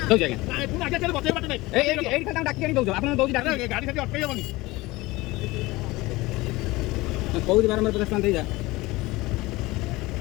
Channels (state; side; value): quieter; right; 20.5 dB